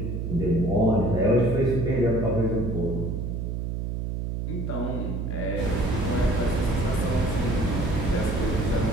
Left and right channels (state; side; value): noise; right; hum, 3 dB below the sound